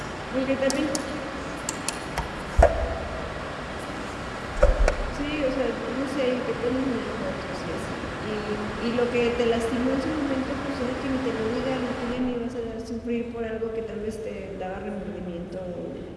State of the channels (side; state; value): both; identical; correlation 1.00